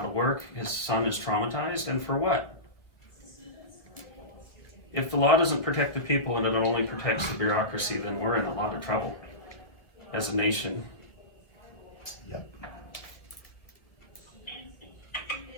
of work, his son is traumatized, and for what? If the law doesn't protect the people and it only protects the bureaucracy, then we're in a lot of trouble as a nation. Yep.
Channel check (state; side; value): late; right; 1.9 ms